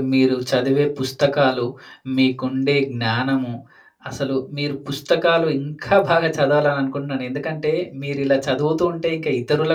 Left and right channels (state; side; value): identical; both; correlation 1.00